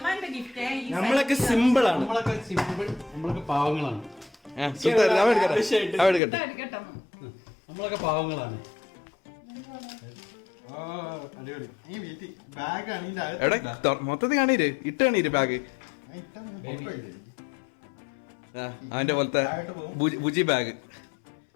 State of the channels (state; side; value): drops out; right; at 6.2 s